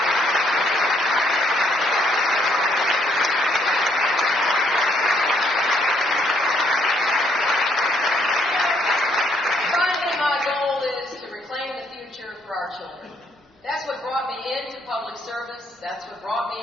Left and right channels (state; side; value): normal; both; correlation 0.70